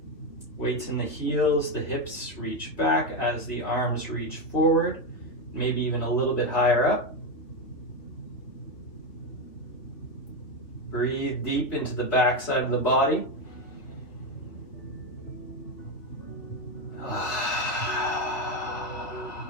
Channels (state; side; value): late; right; 2.8 ms